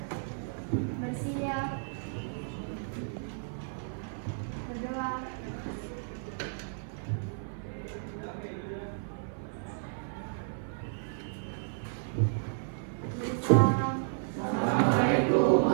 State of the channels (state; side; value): silent; left; 56 dB below the other